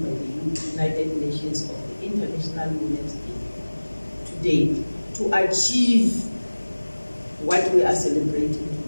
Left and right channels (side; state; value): both; inverted; correlation -1.00